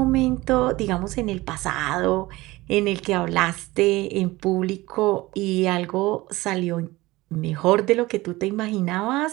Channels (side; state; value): left; quieter; 19.7 dB